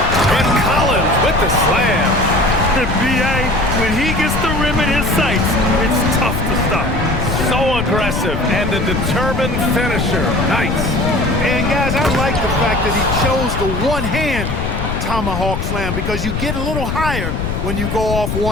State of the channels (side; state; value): left; noise; rumble, 3 dB below the sound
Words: Collins with the slam. B.A., when he gets the rim in his sights, it's tough to stop. So aggressive and a determined finisher. Nice. And guys, I like the fact that he chose the one-hand tomahawk slam because you get a little higher when you go off